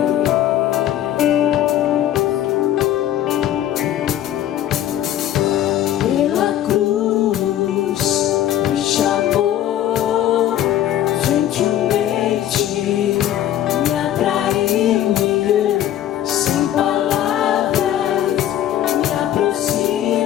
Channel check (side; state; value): right; quieter; 11.8 dB